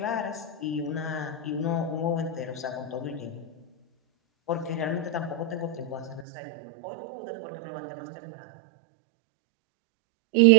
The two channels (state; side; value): drops out; left; at 6.2 s